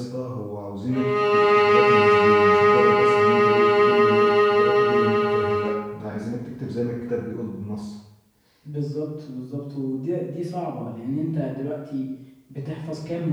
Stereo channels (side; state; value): both; identical; correlation 1.00